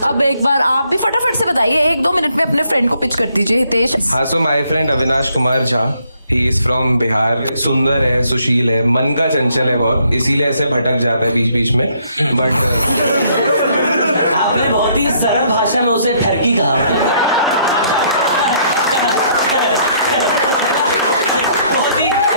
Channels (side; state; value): both; inverted; correlation -0.68